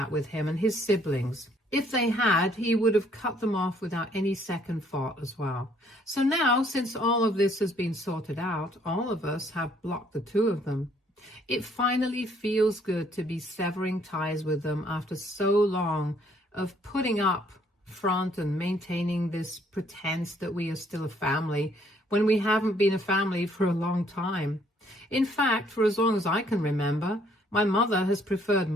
with him and his siblings. If they had, he would have cut them off without any second thought as well. So now, since all of this has been sorted out, all of us have blocked the two of them. It finally feels good to be severing ties with them after so long of putting up front and maintaining this pretense that we are still a family when we haven't been a family for a long time. In fact, for as long as I can remember, my mother has preferred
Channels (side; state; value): both; normal; correlation 0.65